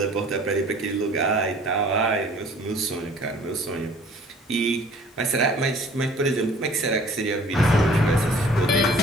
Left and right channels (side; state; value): both; normal; correlation 0.52